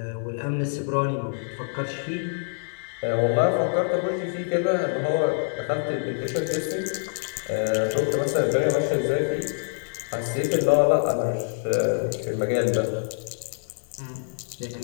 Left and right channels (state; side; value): silent; right; 61 dB below the other